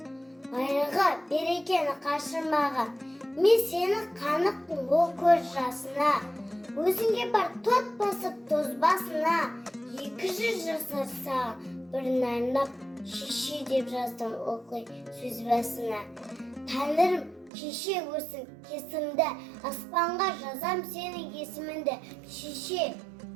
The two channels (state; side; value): drops out; left; at 17.5 s